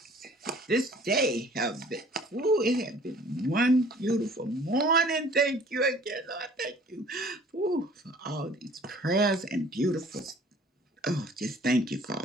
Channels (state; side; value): normal; both; correlation 0.52